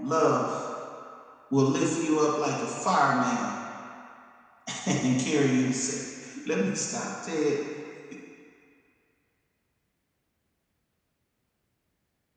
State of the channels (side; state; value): both; identical; correlation 1.00